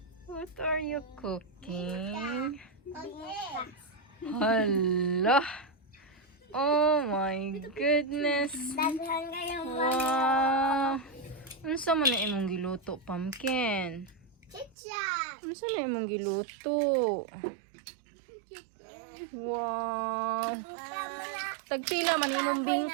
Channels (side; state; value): left; drops out; at 14.8 s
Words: What are you cooking? Hala! Oh my goodness! Wow! Unsa man na imong giluto, Pumpkin? Unsa na imong giluto? Wow! Tagpila man imong